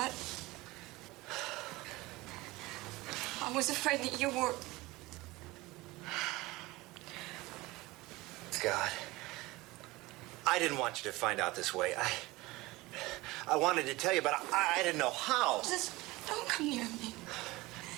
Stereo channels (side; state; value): left; quieter; 20.7 dB